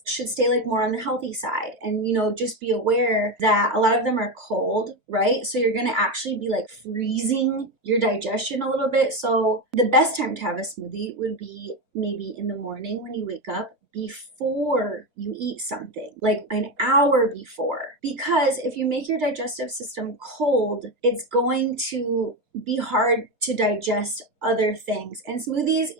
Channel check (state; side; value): late; left; 2.5 ms